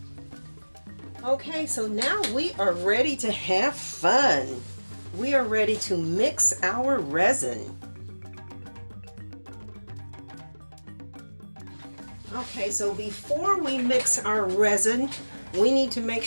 Okay, so now we are ready to have fun. We are ready to mix our resin. Okay, so before we mix our resin, we need to make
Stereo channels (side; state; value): both; inverted; correlation -1.00